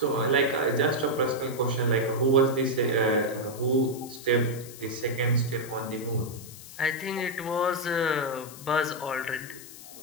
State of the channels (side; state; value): left; noise; hiss, 16 dB below the sound